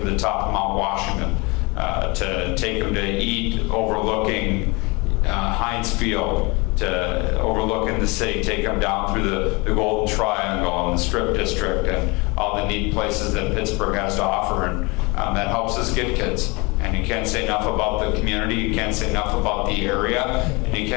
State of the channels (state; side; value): quieter; right; 26.6 dB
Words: to the top of Mount Washington, to take them to eat overlooking Heinz Field, to overlooking the city, take them down through the Golden Triangle and the Strip District and all the neat places that Pittsburgh has to offer, and that helps us get kids. And you can't say enough about the community, you can't say enough about the area, and you